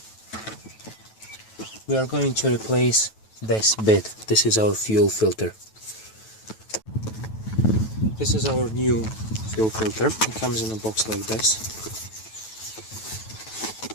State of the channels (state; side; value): late; right; 9.2 ms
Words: We are going to replace this bit. This is our fuel filter. This is our new fuel filter. It comes in a box like this.